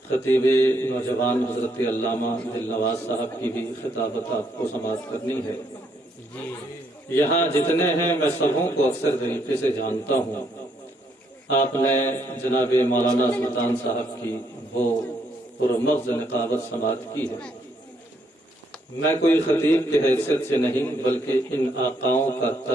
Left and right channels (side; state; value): both; normal; correlation 0.73